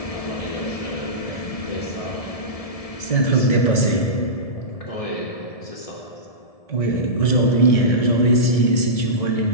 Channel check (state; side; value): late; right; 1.7 ms